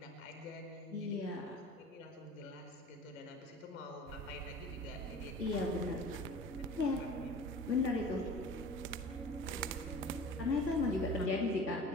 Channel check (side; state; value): both; normal; correlation 0.41